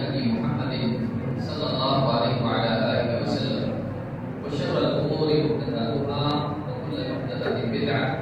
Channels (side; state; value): both; identical; correlation 1.00